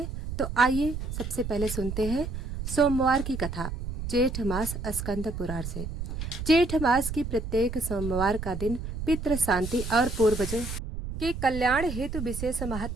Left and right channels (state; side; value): noise; right; rumble, 6 dB below the sound